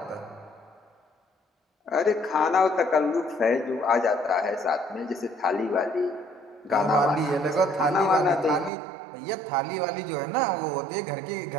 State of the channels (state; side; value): drops out; left; at 8.7 s